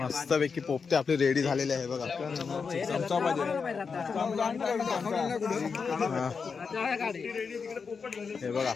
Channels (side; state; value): right; quieter; 5.4 dB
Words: पैकी पोपटी आपली रेडी झालेली आहे बघा. हे बघा